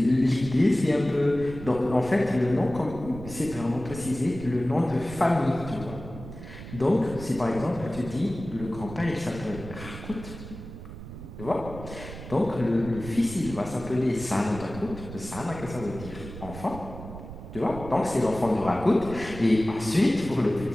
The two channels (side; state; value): right; noise; rumble, 12 dB below the sound